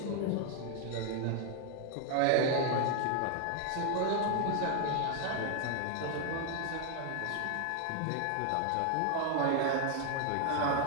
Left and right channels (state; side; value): different; both; correlation 0.00